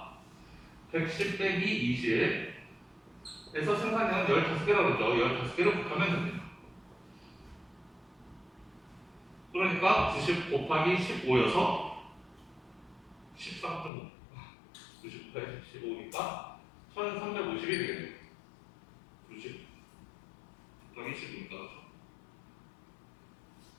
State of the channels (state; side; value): drops out; right; at 13.9 s